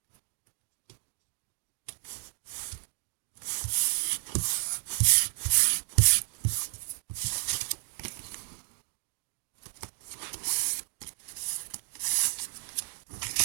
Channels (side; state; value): left; silent; digital silence